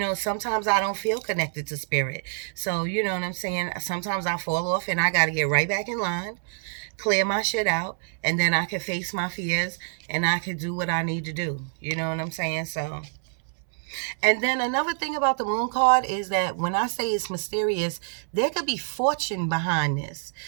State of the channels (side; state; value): left; silent; 61 dB below the other